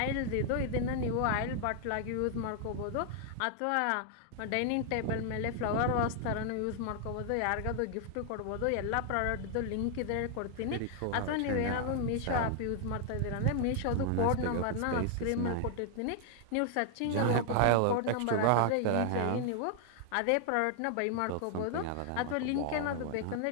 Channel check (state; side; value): different; both; correlation 0.00